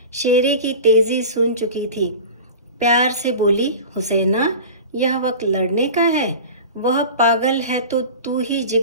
शेरे की तेज़ी सुन चुकी थी। प्यार से बोली, हुसैना, यह वक्त लड़ने का है। वह पागल है तो तू ही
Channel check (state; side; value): inverted; both; correlation -0.34